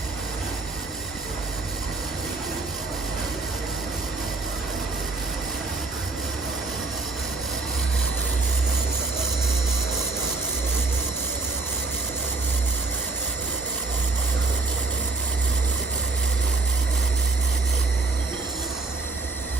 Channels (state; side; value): quieter; left; 3.6 dB